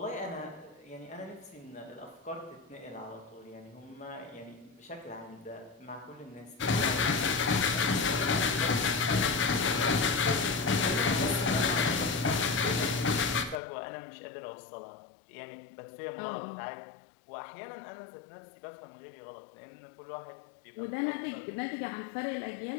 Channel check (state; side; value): drops out; right; at 13.6 s